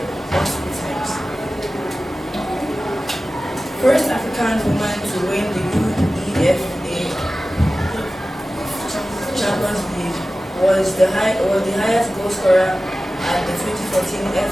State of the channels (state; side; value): normal; both; correlation 0.95